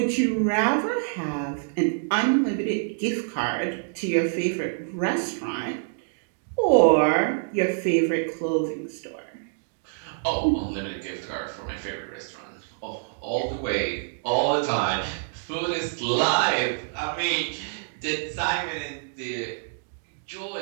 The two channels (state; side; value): silent; left; digital silence